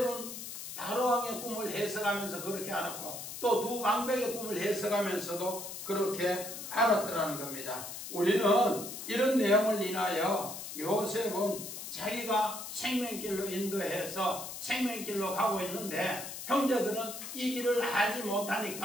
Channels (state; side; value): noise; left; hiss, 9 dB below the sound